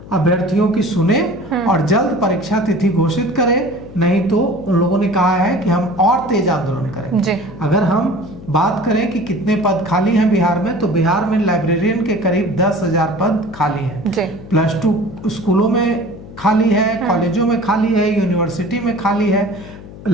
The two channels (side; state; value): left; noise; hum, 16 dB below the sound